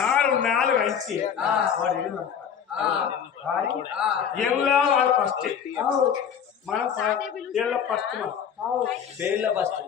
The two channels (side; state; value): right; quieter; 7.9 dB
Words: 4 అయితే వాడు ఎలా వాడు ఫస్ట్ మనం ఏళ్ళ ఫస్ట్